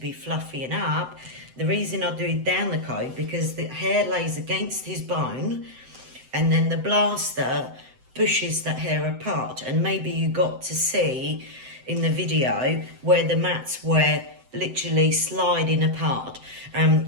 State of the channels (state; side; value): late; left; 7.8 ms